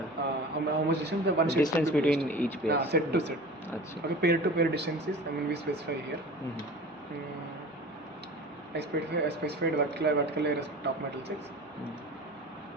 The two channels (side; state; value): both; normal; correlation 0.38